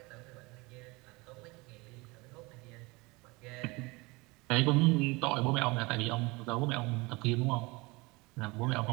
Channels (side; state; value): left; quieter; 24.8 dB